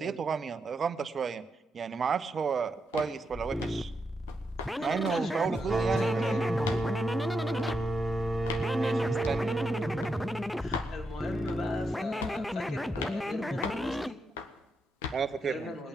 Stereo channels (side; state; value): both; normal; correlation 0.84